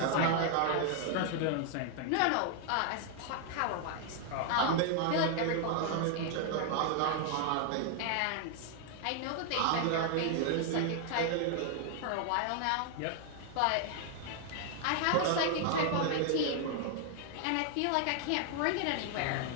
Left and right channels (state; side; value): different; both; correlation 0.00